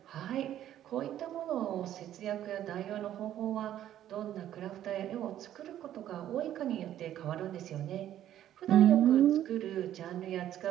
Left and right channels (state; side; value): quieter; left; 11.7 dB